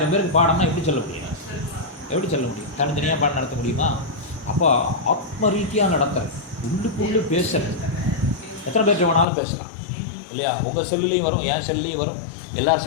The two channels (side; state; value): right; drops out; at 9.2 s